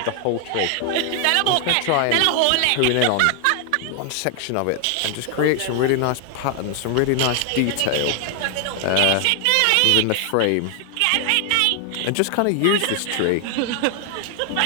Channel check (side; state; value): both; different; correlation 0.00